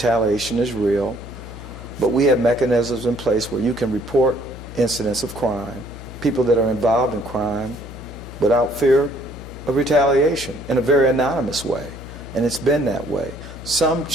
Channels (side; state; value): left; noise; hum, 14 dB below the sound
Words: is real. But we have mechanisms in place where you can report incidents of crime, people that are involved in crime, without fear of retaliation in a very anonymous way. And it's been that way. Some